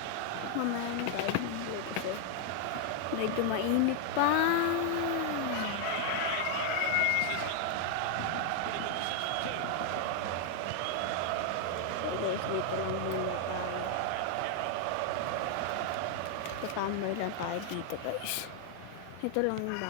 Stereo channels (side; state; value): both; different; correlation 0.00